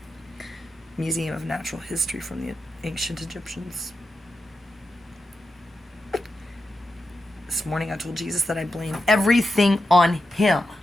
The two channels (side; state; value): both; normal; correlation 0.88